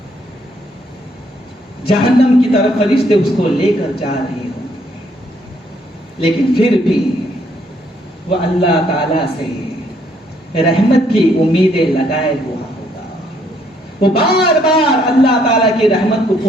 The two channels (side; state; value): both; normal; correlation 0.69